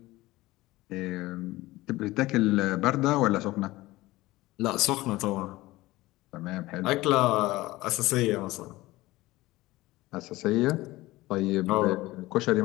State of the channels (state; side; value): quieter; right; 18.7 dB